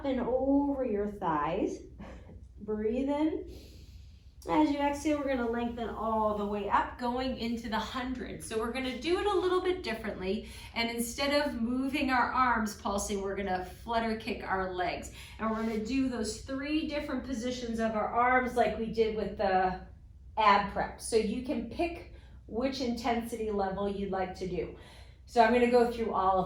and over your thighs. Breathe in. As you exhale, we're gonna lengthen all the way up, going into the 100. So we're gonna do it a little bit differently. And instead of moving our arms pulsing, we're gonna flutter kick our legs. And we're gonna do those 3 different positions of our arms like we did with the ab prep. So you can pick which intensity level you'd like to do. So I'm going to go through all of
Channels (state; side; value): identical; both; correlation 1.00